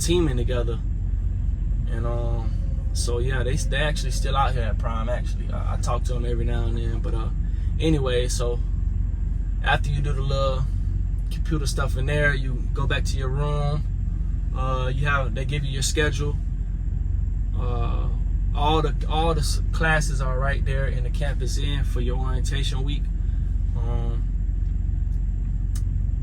together. And so yeah, they actually still out here at Prime. Actually, I talk to them every now and then. But anyway, so after you do the little computer stuff in there, you go back to your room. They give you your schedule. All the classes are right there in the campus inn for your orientation week.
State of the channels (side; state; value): both; identical; correlation 1.00